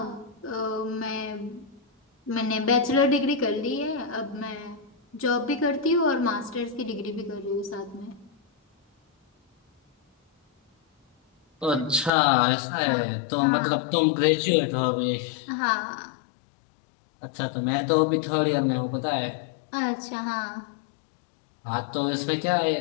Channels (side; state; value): right; drops out; at 12.1 s